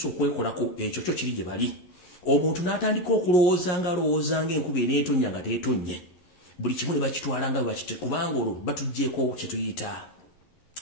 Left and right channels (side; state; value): right; late; 11 ms